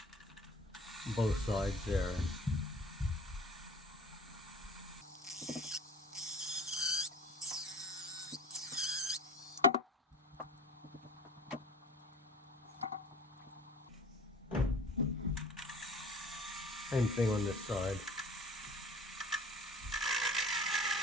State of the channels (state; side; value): normal; both; correlation 0.42